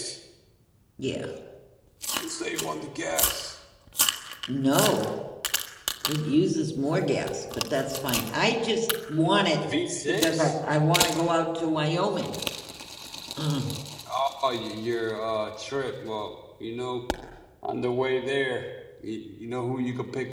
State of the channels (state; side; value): identical; both; correlation 1.00